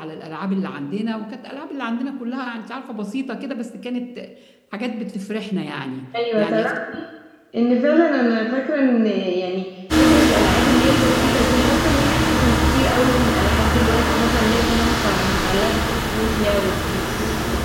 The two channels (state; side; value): identical; both; correlation 1.00